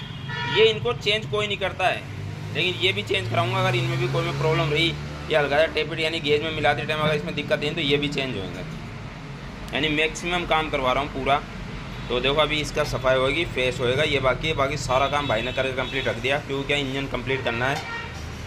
ये इनको चेंज कोई नहीं करता है, लेकिन ये भी चेंज कराऊंगा अगर इनमें भी कोई में प्रॉब्लम रही या हल्का टेपिट यानी गेज में मिलाते टाइम अगर इसमें दिक्कत है तो ये भी चेंज होंगे। यानी मैक्सिमम काम करवा रहा हूँ पूरा। तो देखो अभी इसका सफाई होगी, फेस होएगा, ये बाकी है। बाकी सारा काम भाई ने करके कंप्लीट रख दिया, क्योंकि क्या इंजन कंप्लीट करना है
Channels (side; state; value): both; identical; correlation 1.00